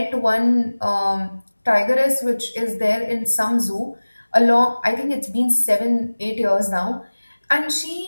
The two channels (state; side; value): inverted; both; correlation -1.00